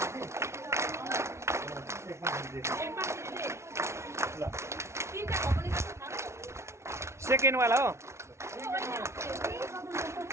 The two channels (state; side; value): late; left; 0.13 ms